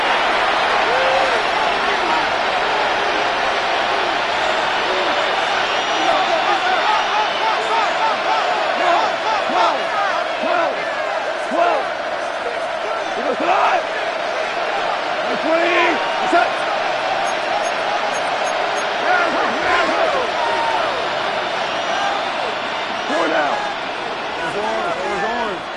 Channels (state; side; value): identical; both; correlation 1.00